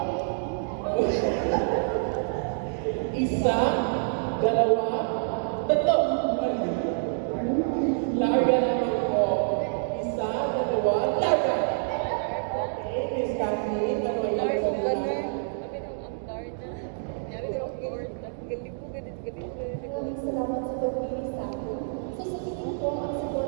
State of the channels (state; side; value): silent; left; digital silence